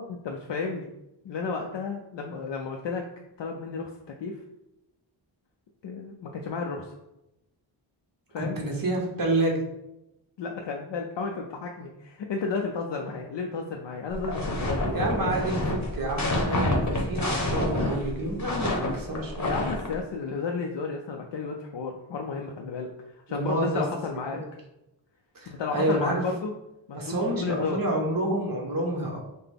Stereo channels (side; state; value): both; normal; correlation 0.10